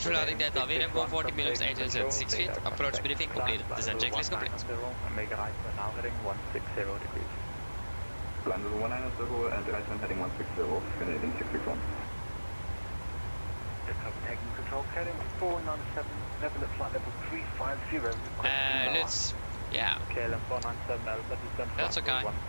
landing data, VRM 140 minutes, 876 feet, approach briefing completed, descent checklist complete. And make a right turn now heading 160 degrees. Landed 190 and right turn heading 160, Canadian 661. Taking control, heading 497, level at flight level 350. Let's, yeah. KLM 497 Alpha, descent That's okay.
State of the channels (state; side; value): inverted; both; correlation -1.00